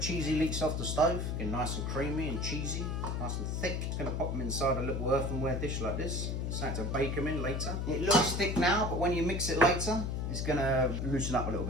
leeks off the stove. Getting nice and creamy and cheesy, nice and thick. Just going to pop them inside a little earthenware dish like this. Starting to bake them in later. It looks thick now, but when you mix it later, it's going to loosen up a little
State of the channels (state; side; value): noise; left; hum, 1 dB below the sound